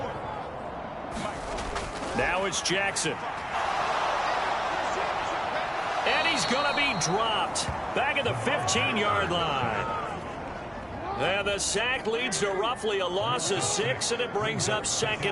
Now it's Jackson. And he's going to be dropped back at the 15-yard line. And the sack leads to roughly a loss of 6, and it brings up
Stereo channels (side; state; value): both; identical; correlation 1.00